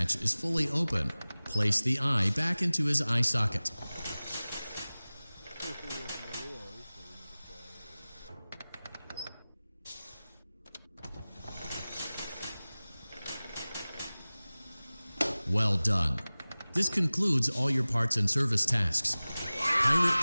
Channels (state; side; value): inverted; both; correlation -0.98